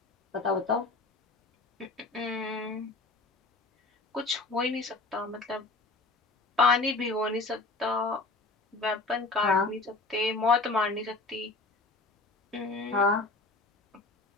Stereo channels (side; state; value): right; quieter; 3.4 dB